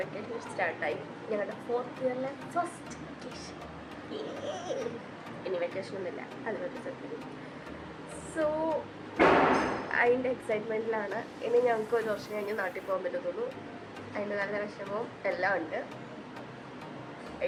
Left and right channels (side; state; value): both; identical; correlation 1.00